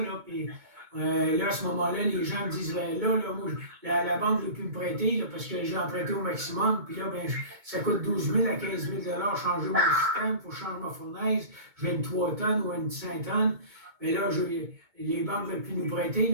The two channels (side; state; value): left; late; 2.2 ms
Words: puis là, à ce moment-là, les gens me disent, ben là, moi, la banque ne veut plus me prêter, là, parce que j'ai emprunté au maximum, puis là, ben, ça coûte 12 000 à 15 000 changer mon système pour changer ma fournaise. J'ai une 3 tonnes ou une 5 tonnes, mais là, les banques ne veulent plus nous prêter,